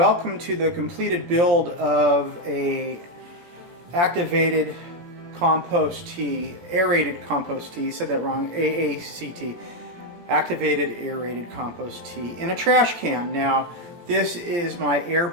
to the completed build of a activated compost tea, aerated compost tea, said that wrong, AACT, activated aerated compost tea in a trash can. Now this is my air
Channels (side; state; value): left; late; 17 ms